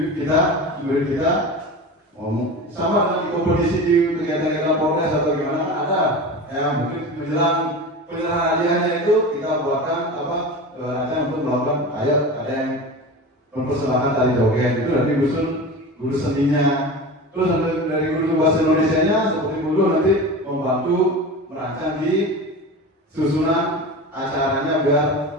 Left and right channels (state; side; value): normal; both; correlation 0.30